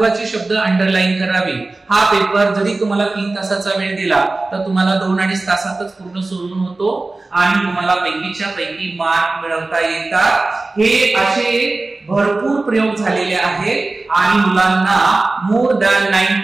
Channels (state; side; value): quieter; left; 3.3 dB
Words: शब्द अंडरलाईन करावे. हा पेपर जरी तुम्हाला 3 तासाचा वेळ दिला तर तुम्हाला 2-2.5 तासातच पूर्ण सोडून होतो आणि तुम्हाला पैकीच्या पैकी मार्क मिळवता येतात. हे असे भरपूर प्रयोग झालेले आहेत आणि मुलांना मोर दॅन